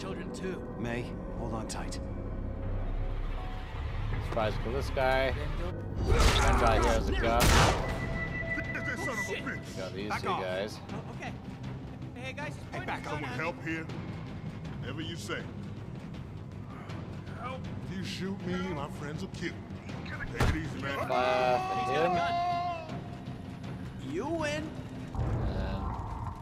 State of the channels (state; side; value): identical; both; correlation 1.00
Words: too. May, hold on tight. Tries to kill this guy. One guy here has a gun. Shit. We got these Back two off. guys. Oh, okay. Hey guys, just point back this off. gun at Help me. here? Whatever you say. Help. If you shoot me, my friends will kill me. Take it easy, man. Fire for He's him. got a gun. You win.